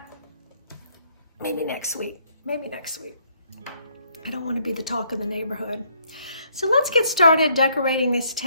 maybe next week. I don't want to be the talk of the neighborhood. So let's get started decorating this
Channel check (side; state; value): both; inverted; correlation -0.68